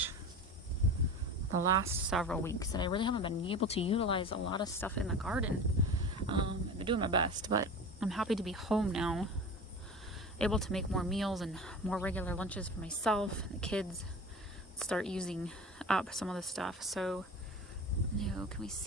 the last several weeks that I really haven't been able to utilize a lot of stuff in the garden. I've been doing my best, but I'm happy to be home now, able to make more meals and more regular lunches for myself and the kids, start using up some of the stuff. So, can we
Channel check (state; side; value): normal; both; correlation 0.34